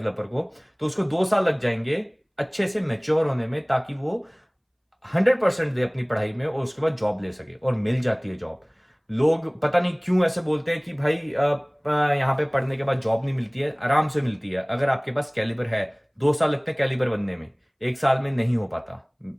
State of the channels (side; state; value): both; identical; correlation 1.00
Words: को, तो उसको 2 साल लग जाएंगे अच्छे से मैच्योर होने में, ताकि वो 100% दे अपनी पढ़ाई में और उसके बाद जॉब ले सके, और मिल जाती है जॉब। लोग पता नहीं क्यों ऐसे बोलते हैं कि भाई यहाँ पे पढ़ने के बाद जॉब नहीं मिलती है। आराम से मिलती है अगर आपके पास कैलिबर है। 2 साल लगते हैं कैलिबर बनने में, 1 साल में नहीं हो पाता।